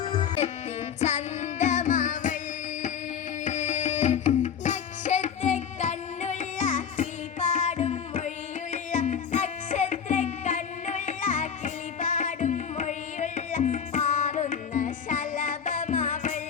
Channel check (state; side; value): quieter; right; 7.4 dB